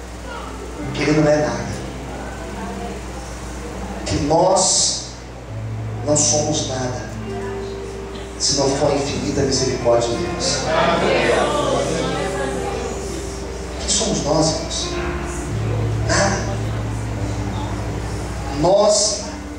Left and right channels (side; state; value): both; identical; correlation 1.00